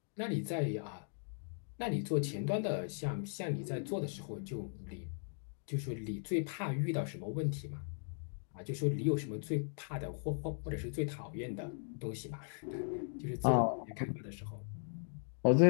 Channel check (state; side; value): silent; right; digital silence